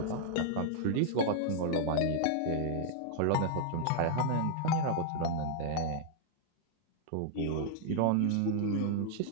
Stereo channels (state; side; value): different; both; correlation -0.01